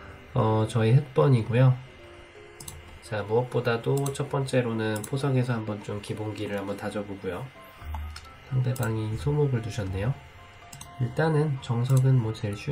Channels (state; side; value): identical; both; correlation 1.00